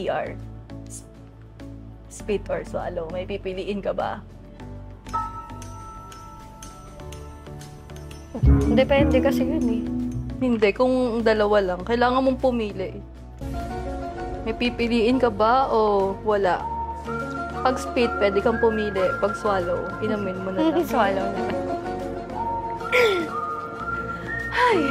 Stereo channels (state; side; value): identical; both; correlation 1.00